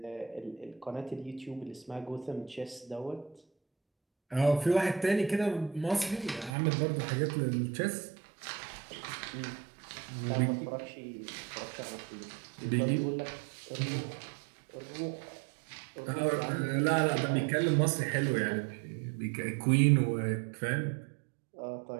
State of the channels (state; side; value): drops out; left; at 6.5 s